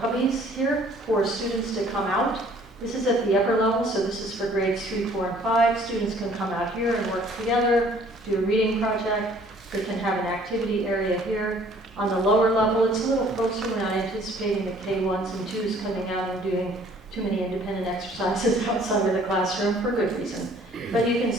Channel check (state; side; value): normal; both; correlation 0.56